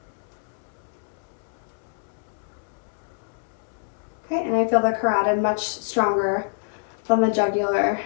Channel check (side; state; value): right; silent; 61 dB below the other